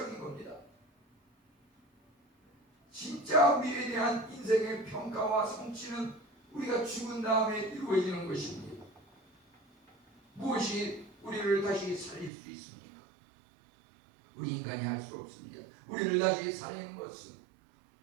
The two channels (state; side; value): drops out; left; at 12.3 s